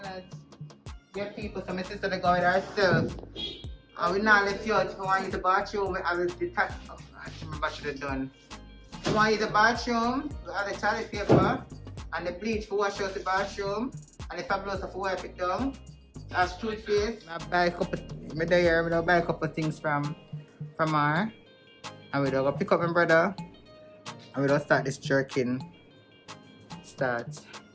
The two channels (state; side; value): identical; both; correlation 1.00